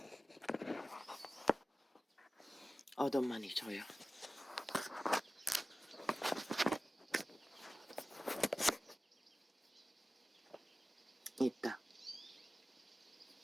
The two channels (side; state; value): both; normal; correlation 0.95